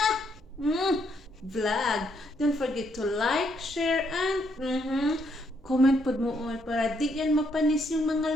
vlog. Don't forget to like, share, and comment pod mo para di yan mapanis yung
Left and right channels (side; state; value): both; normal; correlation 0.74